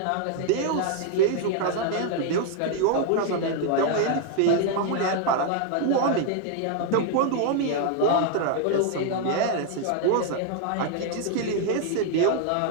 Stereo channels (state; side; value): different; both; correlation 0.00